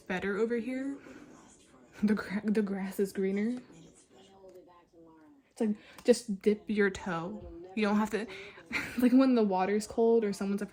better over here. The grass is greener. It's like just dip your toe. You don't have to like when the water's cold or someone's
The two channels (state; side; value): identical; both; correlation 1.00